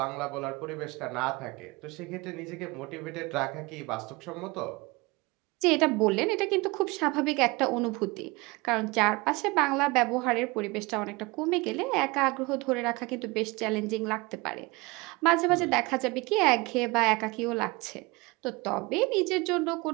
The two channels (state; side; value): quieter; left; 24.6 dB